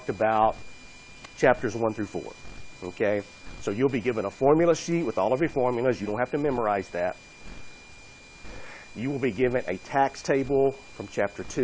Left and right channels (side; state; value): both; identical; correlation 1.00